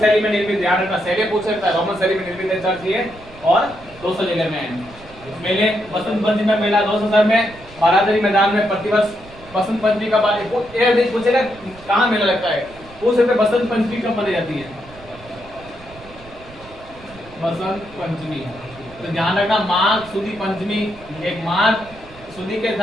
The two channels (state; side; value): noise; right; rumble, 21 dB below the sound